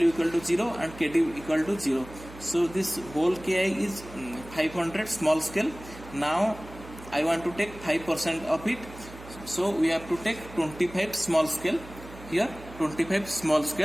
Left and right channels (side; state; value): right; noise; hum, 16 dB below the sound